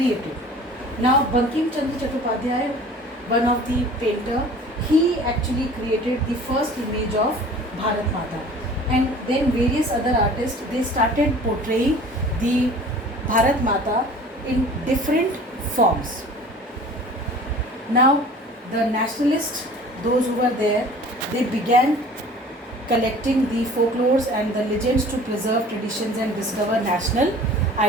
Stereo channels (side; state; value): both; normal; correlation 0.45